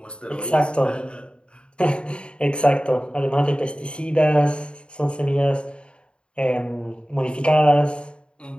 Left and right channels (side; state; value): right; late; 0.054 ms